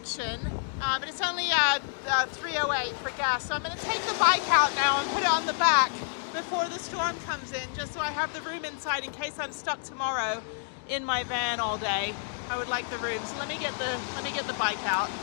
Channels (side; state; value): right; silent; digital silence